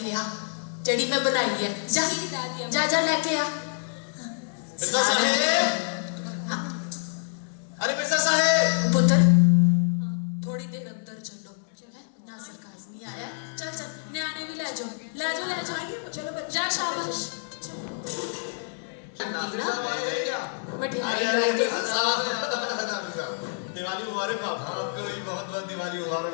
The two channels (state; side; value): silent; right; digital silence